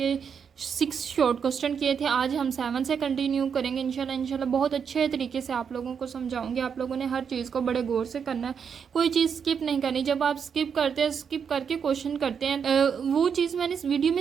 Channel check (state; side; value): quieter; left; 6.9 dB